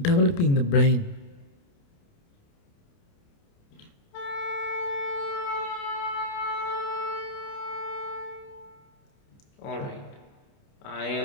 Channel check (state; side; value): late; right; 29 ms